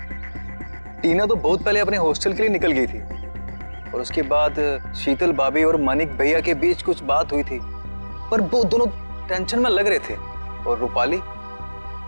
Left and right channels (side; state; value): both; inverted; correlation -1.00